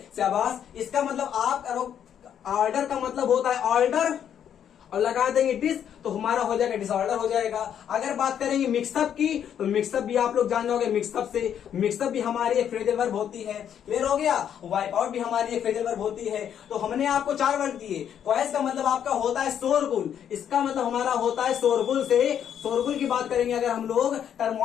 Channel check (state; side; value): quieter; right; 9.2 dB